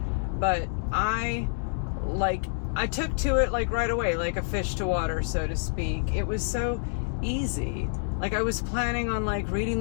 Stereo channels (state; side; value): silent; right; digital silence